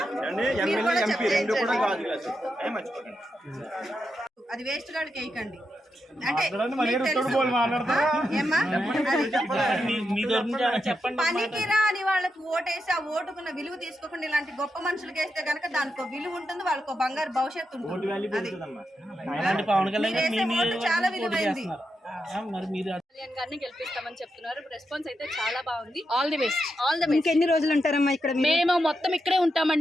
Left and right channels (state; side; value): normal; both; correlation 0.86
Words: అది వేస్ట్ గాడికి వేయకండి అంటే పనికిరా అని వాళ్ళకి ఓటేసి ఆ ఓటుకున్న విలువ తీసుకోకుండా ఇలాంటి గొప్ప మనుషులకి వేస్తే గనక దానికి విలువ ఉంటుంది, వాళ్ళకు బంగారు భవిష్యత్తు ఉంటుంది. చాలా విలువైంది. గారిని గెలిపిస్తామని చెప్తున్నారు. రెస్పాన్స్ అయితే చాలా బాగుంది. All the best. ఇంకెన్ని రోజులు ఉంటారమ్మా ఇక్కడ? మేము మొత్తం ఇక్కడే